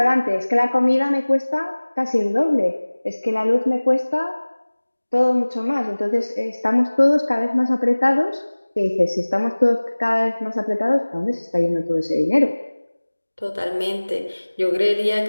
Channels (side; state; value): both; inverted; correlation -1.00